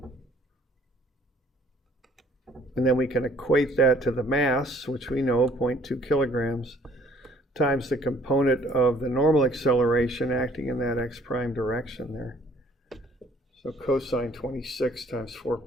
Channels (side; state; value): both; normal; correlation 0.58